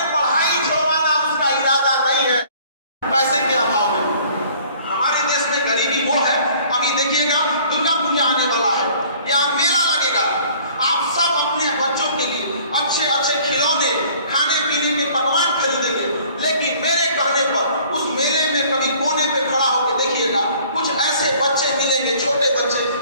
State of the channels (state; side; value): inverted; both; correlation -0.54